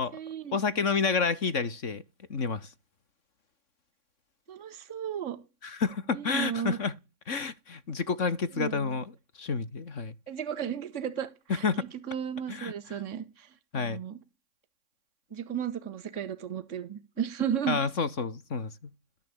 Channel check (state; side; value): late; right; 3.6 ms